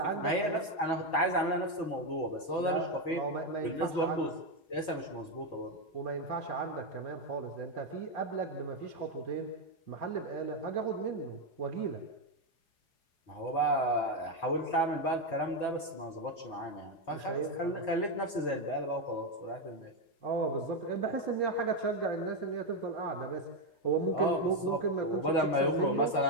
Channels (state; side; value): late; right; 4.7 ms